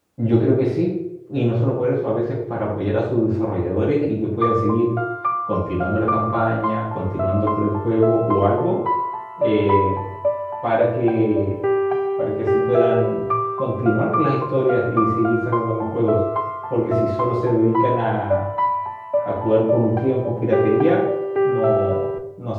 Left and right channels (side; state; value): both; identical; correlation 1.00